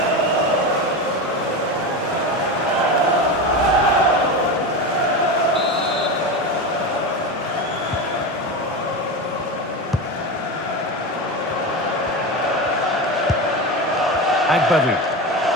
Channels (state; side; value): normal; both; correlation 0.21